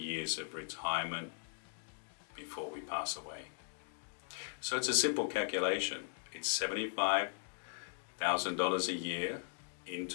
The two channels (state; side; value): silent; right; digital silence